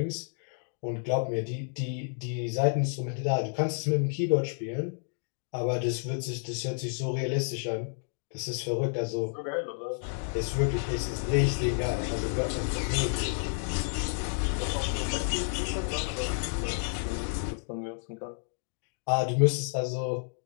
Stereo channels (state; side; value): silent; right; digital silence